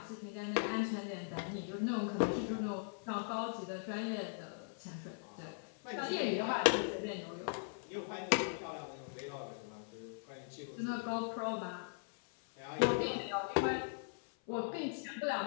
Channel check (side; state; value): right; silent; 51 dB below the other